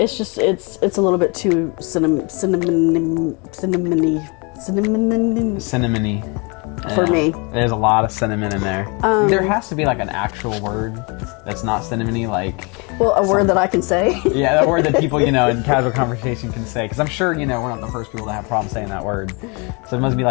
just it's a little bit too cinnamony for Yeah. me. There's a lot of cinnamon in there. There has to be like an actual word that's not cinnamony, like Well, a word that I can say. yeah, that word that people in casual conversation can say. Because I'm sure we're not the first people to have problems saying that word. So it must be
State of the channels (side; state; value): right; quieter; 30.8 dB